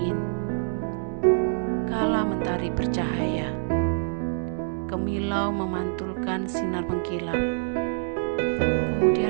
Kala mentari bercahaya, kemilau memantulkan sinar mengkilap,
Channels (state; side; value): silent; left; 61 dB below the other